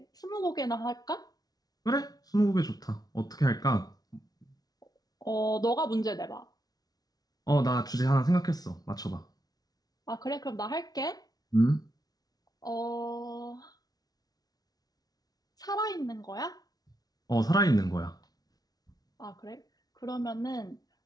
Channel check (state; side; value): late; right; 0.19 ms